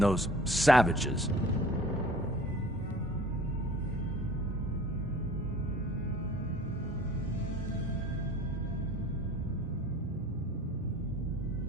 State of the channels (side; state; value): both; normal; correlation 0.47